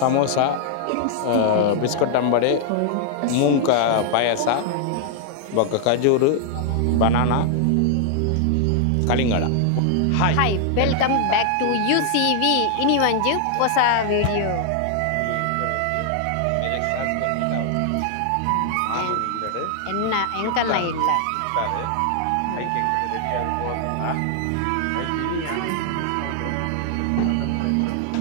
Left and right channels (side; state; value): both; different; correlation 0.00